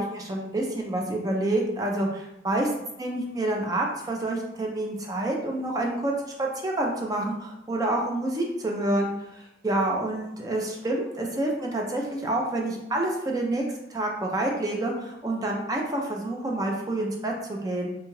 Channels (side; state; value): both; normal; correlation 0.53